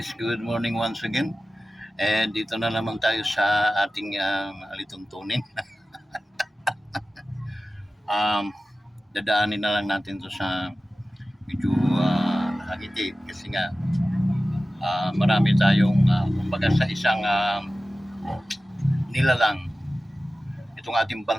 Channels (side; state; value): both; normal; correlation 0.96